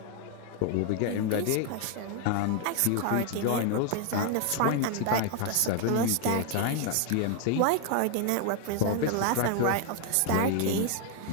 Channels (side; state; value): both; different; correlation 0.01